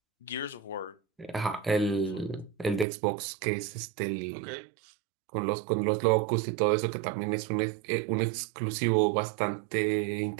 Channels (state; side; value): drops out; left; at 2.9 s